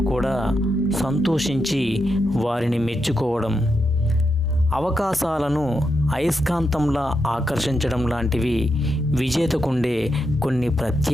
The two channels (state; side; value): normal; both; correlation 0.84